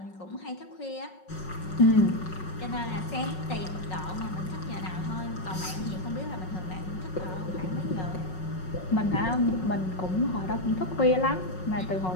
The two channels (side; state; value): right; late; 5.4 ms